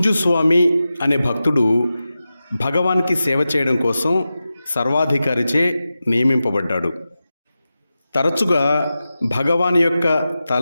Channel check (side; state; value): both; inverted; correlation -0.93